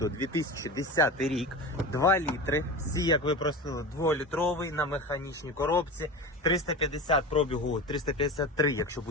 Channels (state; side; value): normal; both; correlation 0.29